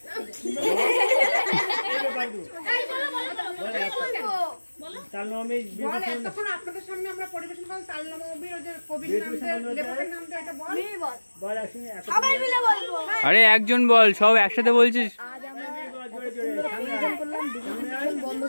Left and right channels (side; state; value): both; inverted; correlation -1.00